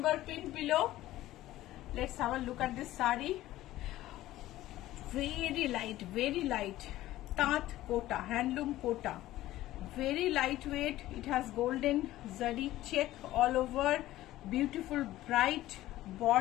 pinned below. Let's have a look at this sari. Very light tat kota, handloom kota, very lightweight. It has golden zari check all over, beautiful bright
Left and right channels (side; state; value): right; quieter; 15.4 dB